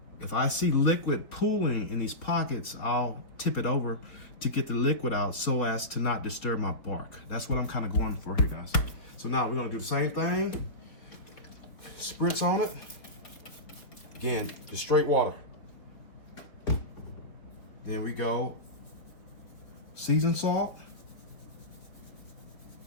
if I see liquid pooling in these pockets, I'll tip it over to get the liquid out so as to not disturb my bark. That's what I'm kind of going for here, guys. So now we're gonna do the same thing. Spritz on it. Again, just straight water. Then we go seasoned salt.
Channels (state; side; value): late; right; 4.1 ms